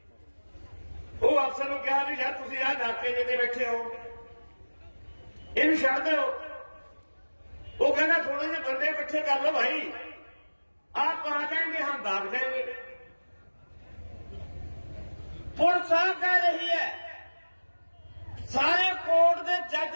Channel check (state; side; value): inverted; both; correlation -1.00